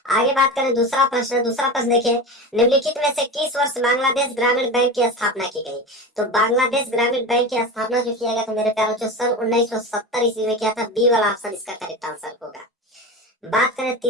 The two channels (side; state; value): both; normal; correlation 0.26